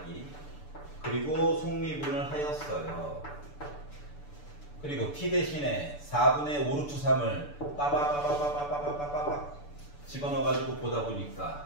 그리고 속미분을 하였어요. 그리고 T 대신에 4분의 5 루트 3을 빠바바바바바바바바바 집어넣어가지고 보다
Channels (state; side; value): late; right; 6.9 ms